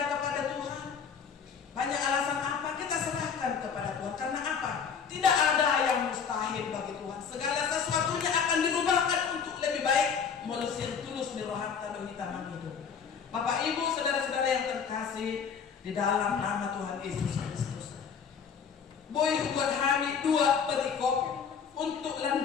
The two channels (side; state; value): right; quieter; 6.6 dB